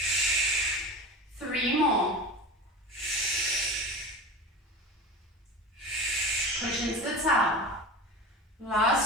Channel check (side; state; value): both; normal; correlation 0.30